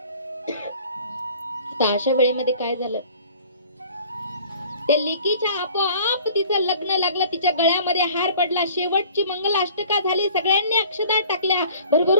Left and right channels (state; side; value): inverted; both; correlation -0.50